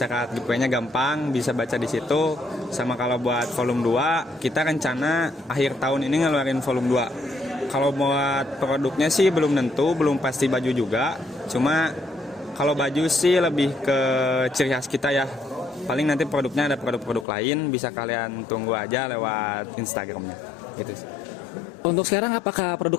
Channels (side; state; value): right; drops out; at 17.2 s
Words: giveaway-nya gampang, bisa baca di situ. Sama kalau buat volume 2, kita rencana akhir tahun ini ngeluarin volume 2. Kalau buat produknya sih belum tentu, belum pasti baju juga. Cuma kalau baju sih lebih ke ciri khas kita ya. Paling nanti produknya ada produk-produk lain, bisa kalian tunggu aja lewat Instagramnya. Gitu sih. Untuk sekarang apakah